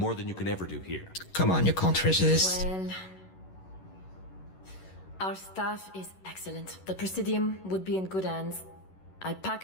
than you can ever do here. Come on, you can't resist. Well, our staff is excellent. The Presidium would be in good hands. I'll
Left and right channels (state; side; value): late; right; 11 ms